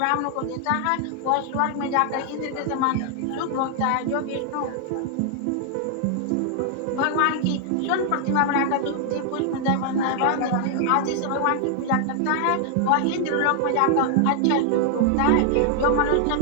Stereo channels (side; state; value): both; different; correlation 0.00